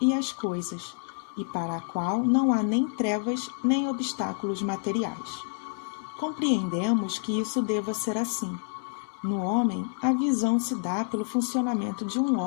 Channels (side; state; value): right; silent; 59 dB below the other